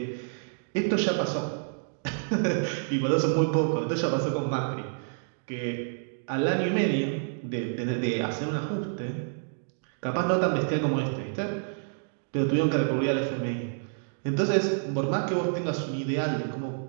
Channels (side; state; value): left; silent; digital silence